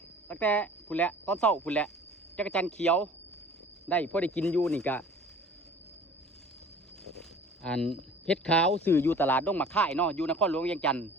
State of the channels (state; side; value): normal; both; correlation 0.46